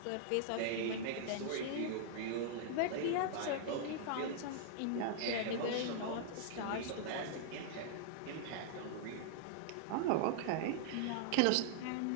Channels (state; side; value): different; both; correlation -0.01